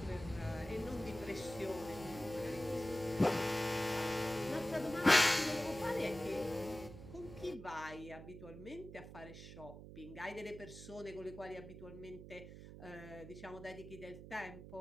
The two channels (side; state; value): right; noise; hum, 13 dB below the sound